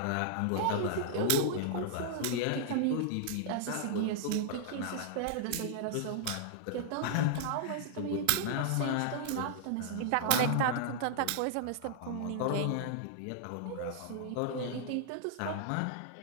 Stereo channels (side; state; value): both; different; correlation -0.01